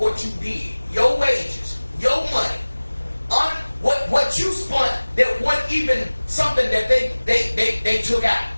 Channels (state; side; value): inverted; both; correlation -1.00